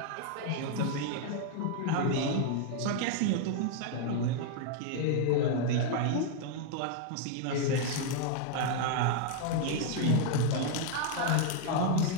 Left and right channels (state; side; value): different; both; correlation 0.00